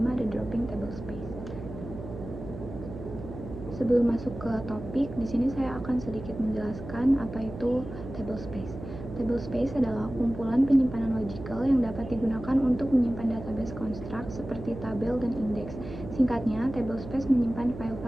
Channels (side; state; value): right; noise; hum, 11 dB below the sound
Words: ada Dropping Table Space. Sebelum masuk ke topik, di sini saya akan sedikit menjelaskan apa itu table space. Table space adalah kumpulan penyimpanan logical yang dapat digunakan untuk menyimpan database construct seperti tabel dan indeks. Singkatnya, table space menyimpan